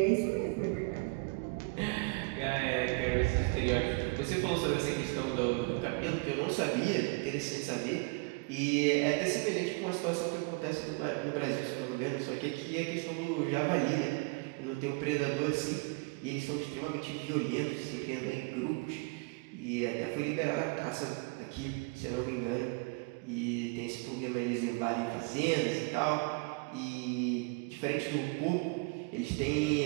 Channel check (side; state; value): left; quieter; 29.0 dB